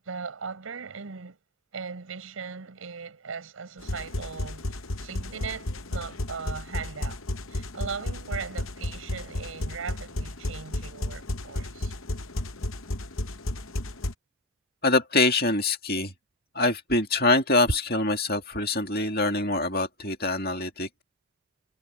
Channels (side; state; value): both; normal; correlation 0.15